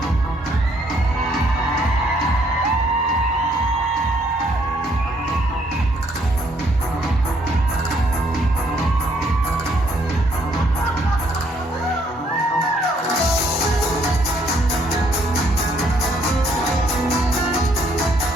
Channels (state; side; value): normal; both; correlation 0.68